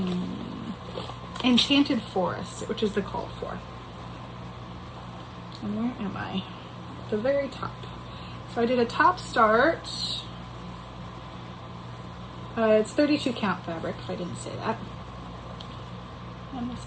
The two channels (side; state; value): both; identical; correlation 1.00